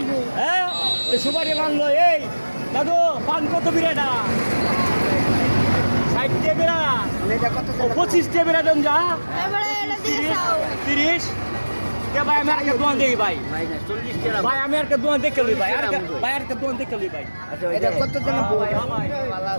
হ্যাঁ তো সুপারি মানলো এই দাদু পান কত বিরাটা 60 টাকা বিরা 25 টাকা বিরা দেন যা এবারে এটা দিয়ে খাও। 30 ভাই আমি আর দোয়ান দেখি ভাই ভাই আমি আর দোয়ান দেখে লই ভাই ভাই আর দোয়ান দেখে লই ভাই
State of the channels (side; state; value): both; inverted; correlation -1.00